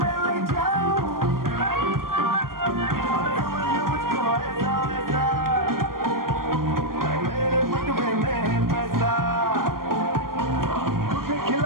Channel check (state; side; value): late; left; 0.92 ms